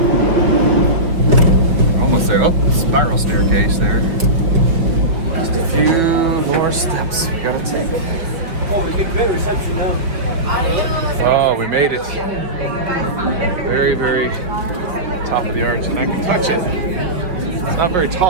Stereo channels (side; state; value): left; late; 5.6 ms